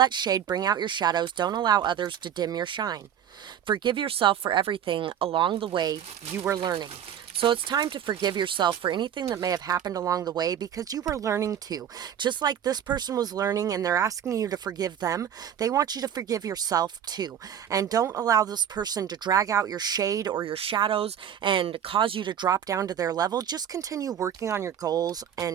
shade bring out your shadows. Don't allow others to dim your shine. Forgive yourself for everything along the way you were learning. So it's time to forgive yourself for anything that may have happened along the way, because you were learning too. Just like this person was learning and they're asking you to forgive them, they want you to forgive yourself too. And don't allow this person to drag out your shade or your shadows and cause you to drop down to their level. Just continue working on your goals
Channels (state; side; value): quieter; left; 9.4 dB